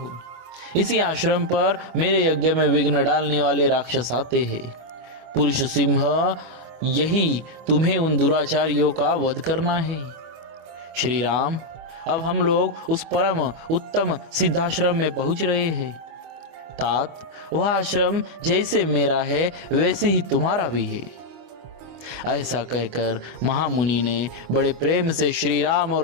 इसी आश्रम पर मेरे यज्ञ में विघ्न डालने वाले राक्षस आते हैं। पुरुष सिंह, यही तुम्हें उन दुराचारियों का वध करना है। श्री राम, अब हम लोग उस परम उत्तम सिद्धाश्रम में पहुंच रहे हैं। तात, वह आश्रम जैसे मेरा है वैसे ही तुम्हारा भी है। ऐसा कहकर महामुनि ने बड़े प्रेम से श्री राम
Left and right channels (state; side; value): late; left; 25 ms